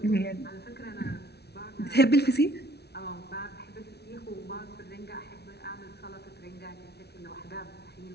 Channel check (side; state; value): right; late; 0.48 ms